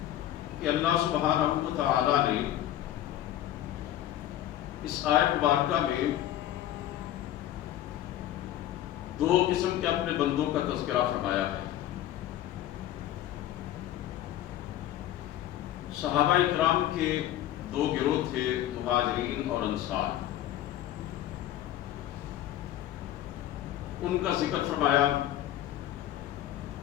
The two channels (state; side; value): quieter; right; 12.8 dB